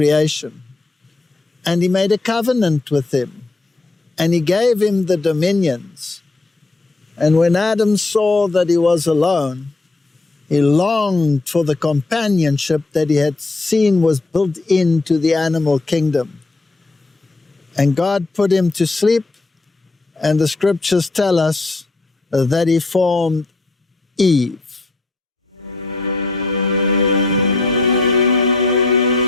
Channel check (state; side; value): quieter; right; 3.3 dB